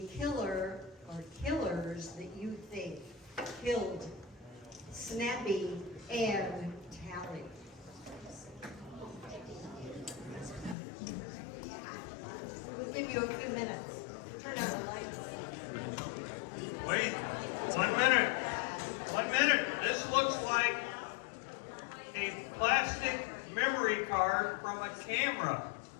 killer or killers that you think killed Snappy and Tally. We'll give you a few minutes. Turn on the lights. Wait, 1 minute. 1 minute. This looks like a plastic memory card from a camera.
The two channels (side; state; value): right; drops out; at 10.8 s